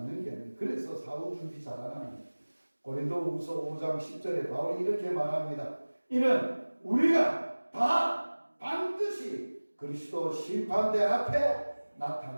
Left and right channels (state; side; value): inverted; both; correlation -1.00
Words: 게 아니에요. 그래서 사후 준비 잘하는 고린도후서 5장 10절에 바울이 이렇게 말합니다. 이는 우리가 다 반드시 그리스도 심판대 앞에